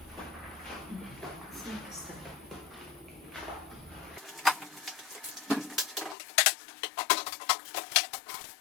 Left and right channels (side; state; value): right; drops out; at 6.2 s